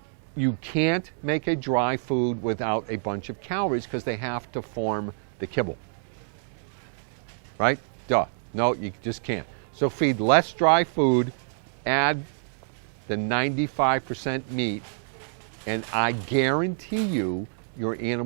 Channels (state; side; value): silent; left; digital silence